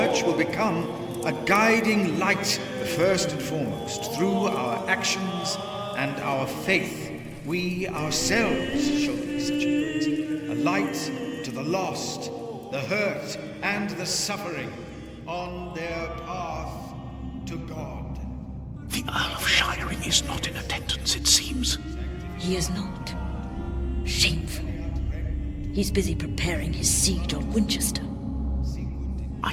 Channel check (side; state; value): both; identical; correlation 1.00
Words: will become a guiding light, the first and foremost, through our actions and our faith. We ourselves shall be such a light to the lost, the hurt, and the suffering on their path to God. The Earl of Shiring is not in attendance, it seems. He is not. Shameful. He's busy preparing his siege on Winchester.